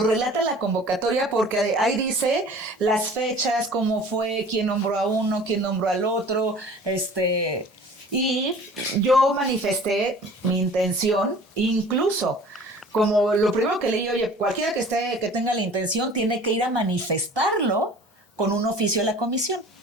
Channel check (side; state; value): both; normal; correlation 0.46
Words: relata la convocatoria porque ahí dice las fechas, cómo fue, quién nombró a uno, quién nombró al otro, y yo manifesté mi intención, incluso como lo primero que leí, oye, cualquiera que tenga la intención tiene que ir a manifestarlo con un oficio a la comisión.